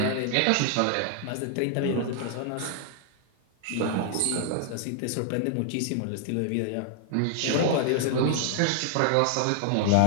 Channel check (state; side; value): different; both; correlation 0.00